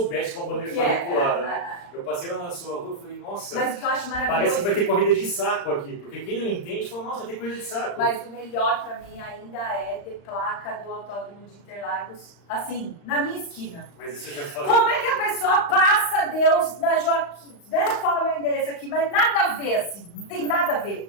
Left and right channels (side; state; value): right; late; 35 ms